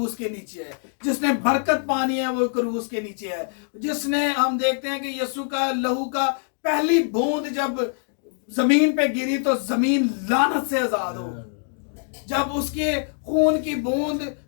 के नीचे है, जिसने बरकत पानी है वो क्रूस के नीचे है, जिसने, हम देखते हैं कि यीशु का लहू का पहली बूंद जब जमीन पे गिरी तो जमीन लानत से आजाद हो। जब उसके खून की बूंद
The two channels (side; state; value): right; silent; 63 dB below the other